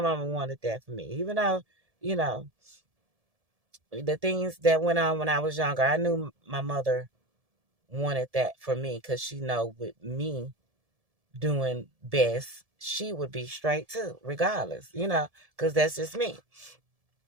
wanted that for me. Even though, you know, the things that went on when I was younger, I knew my mother wanted that for me because she know with me doing best, she would be straight too, regardless, because that's just me.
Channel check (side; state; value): left; late; 1.7 ms